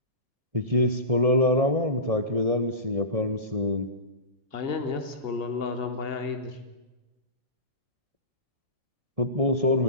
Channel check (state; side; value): late; left; 1.7 ms